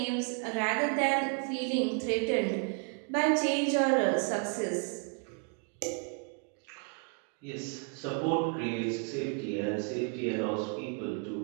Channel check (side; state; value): left; quieter; 39.9 dB